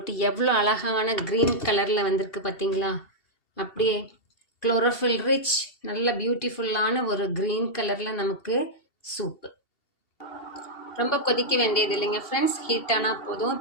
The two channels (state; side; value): late; right; 2.7 ms